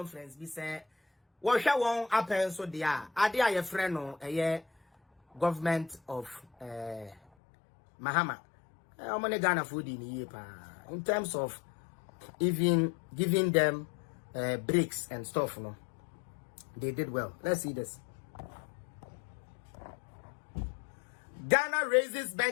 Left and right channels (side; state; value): right; drops out; at 7.2 s